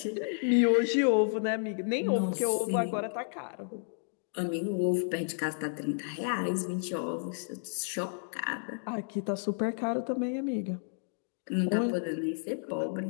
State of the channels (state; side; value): silent; right; digital silence